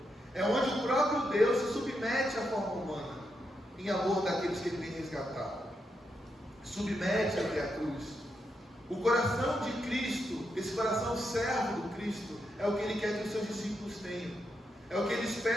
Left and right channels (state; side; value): normal; both; correlation 0.83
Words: É onde o próprio Deus se submete à forma humana, em amor daqueles que Ele tem resgatado. Submete até a cruz. O coração de Cristo, esse coração servo do Cristo, é o que Ele quer que os seus discípulos tenham. É o que Ele